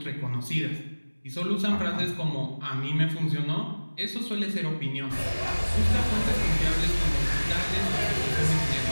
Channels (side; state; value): both; inverted; correlation -1.00